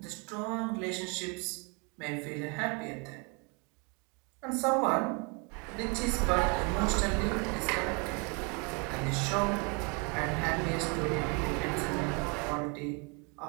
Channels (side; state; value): left; quieter; 32.0 dB